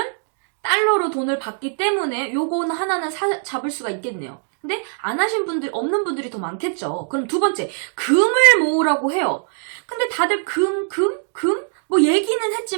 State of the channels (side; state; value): left; silent; 65 dB below the other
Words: 달러로 돈을 받기 때문에 요거는 하나는 잡을 수가 있겠네요. 근데 안 하신 분들, 없는 분들이 더 많겠죠. 그럼 두 번째, 금을 모으라고 해요. 근데 다들 금? 뭐 얘기는